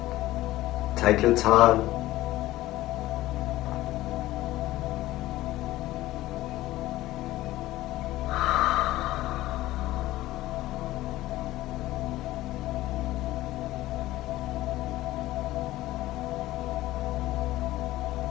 Take your time.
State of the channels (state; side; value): quieter; right; 16.4 dB